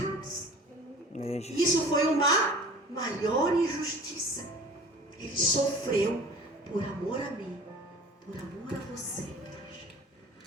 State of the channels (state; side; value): normal; both; correlation 0.43